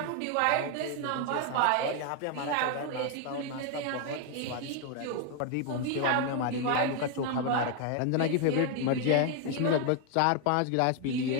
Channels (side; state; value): both; different; correlation 0.01